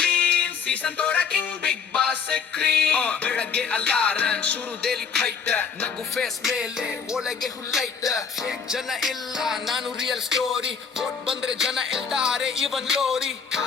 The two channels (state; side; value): quieter; right; 6.2 dB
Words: ಸೀಸನ್ ತೋರ ಕಿಂಗ್ ಬಿಗ್ ಬಾಸ್ ಕ್ರೀನ್ ಬೆಳಗ್ಗೆ ಅಲಾರನ್ ಶುರು ಡೈಲಿ ಫೈಟ್ ನಗು ಫೇಸ್ ಮೇಲೆ ಒಳಗೆ ಹುಲ್ಲೈಟ್ ಫೇಕ್ ಜನ ಇಲ್ಲ ನಾನು ರಿಯಲ್ ಸ್ಟೋರಿ ವೋಟ್ ಬಂದ್ರೆ ಜನ ಎಲ್ತಾರೆ ಇವನ್ ಲೋರಿ